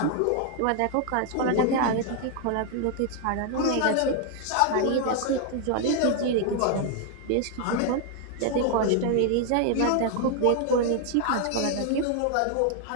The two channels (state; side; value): different; both; correlation 0.00